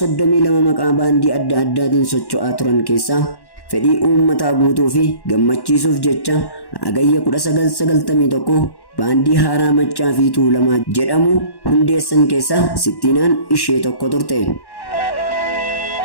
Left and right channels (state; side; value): late; right; 1.1 ms